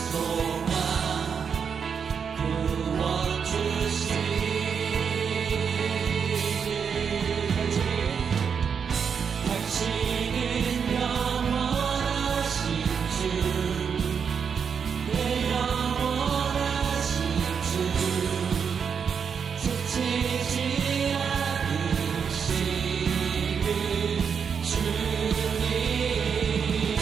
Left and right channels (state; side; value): quieter; left; 6.6 dB